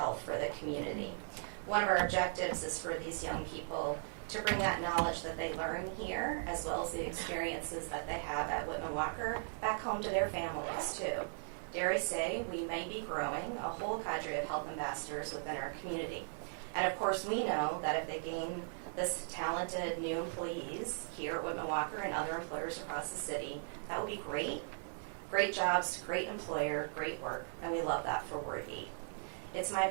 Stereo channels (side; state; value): left; silent; 52 dB below the other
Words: for the community. One of our objectives is for these young people to bring that knowledge that they learn here, as well as the experiences that they have at Whitman Walker, back home to their families too. Dare I say, we may be growing a whole cadre of health ambassadors within our community. And of course, we know that if they gain this talented new employees here at Whitman Walker and other employers across the city, that would be great. Great jobs, great employer, great work, and we love that for Ward 8. It's my